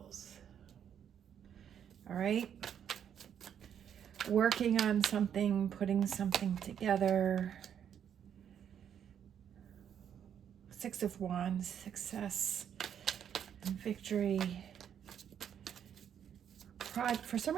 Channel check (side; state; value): left; quieter; 8.8 dB